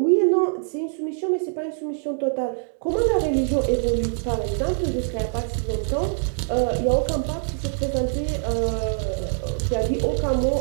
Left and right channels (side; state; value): left; silent; digital silence